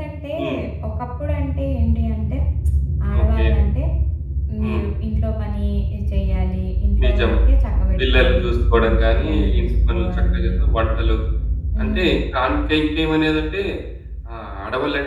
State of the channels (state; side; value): identical; both; correlation 1.00